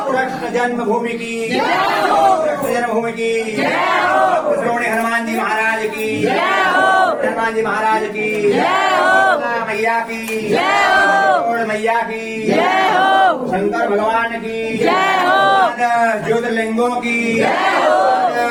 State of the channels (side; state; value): both; identical; correlation 1.00